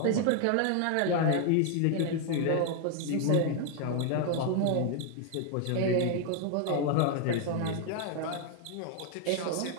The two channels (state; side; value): different; both; correlation 0.00